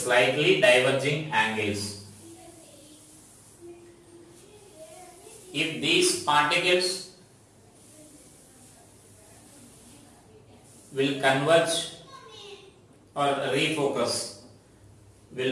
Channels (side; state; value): both; identical; correlation 1.00